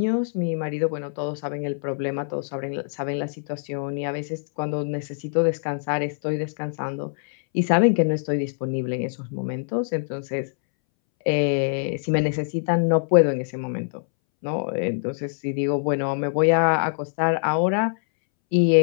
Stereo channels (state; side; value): silent; right; 62 dB below the other